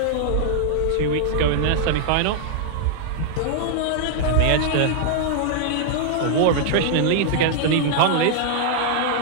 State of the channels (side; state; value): both; different; correlation -0.01